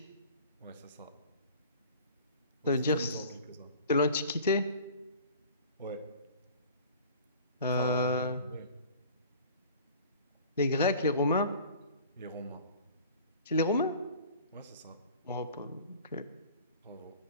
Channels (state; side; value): inverted; both; correlation -0.45